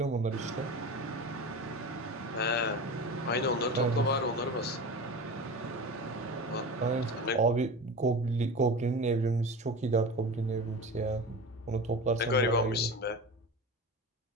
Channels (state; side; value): normal; both; correlation 0.30